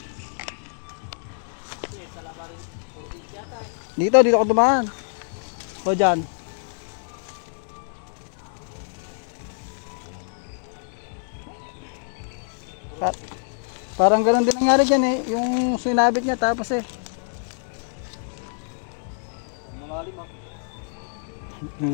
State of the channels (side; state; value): right; silent; digital silence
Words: Dito ako dumaan. O dyan. Parang ganoon din nangyari dyan eh. Yung sinabit niya tapos eh.